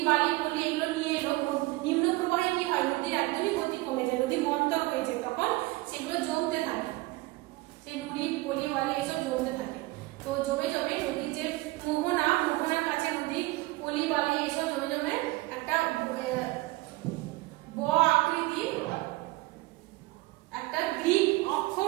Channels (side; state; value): left; quieter; 20.9 dB